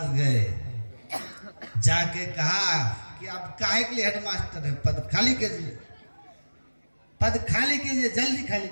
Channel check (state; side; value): inverted; both; correlation -1.00